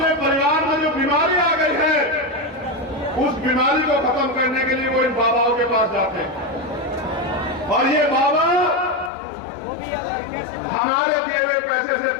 परिवार में जो बीमारी आ गई है उस बीमारी को खत्म करने के लिए वो इन बाबाओं के पास जाते हैं। और ये बाबा हमारे दिए हुए पैसे से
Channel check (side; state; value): right; drops out; at 9.1 s